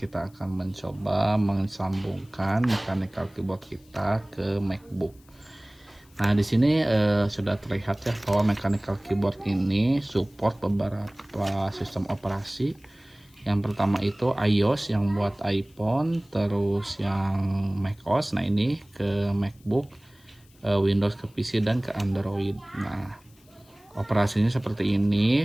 akan mencoba mensambungkan mechanical keyboard kita ke MacBook. Nah, di sini sudah terlihat ya bahwa mechanical keyboard ini support beberapa sistem operasi. Yang pertama itu iOS yang buat iPhone, terus yang macOS. Nah, ini ke MacBook, Windows ke PC dan ke Android. Nah, operasinya seperti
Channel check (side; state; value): left; noise; hiss, 30 dB below the sound